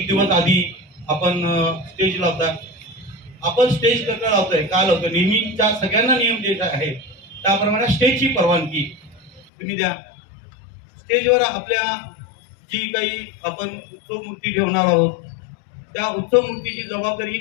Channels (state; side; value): drops out; right; at 9.5 s